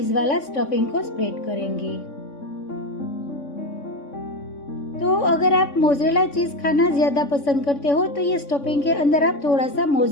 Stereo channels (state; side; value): late; right; 3.6 ms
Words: वाला स्टफिंग को स्प्रेड करेंगे। तो अगर आप मोज़रेला चीज खाना ज्यादा पसंद करते हो तो ये स्टफिंग के अंदर आप थोड़ा सा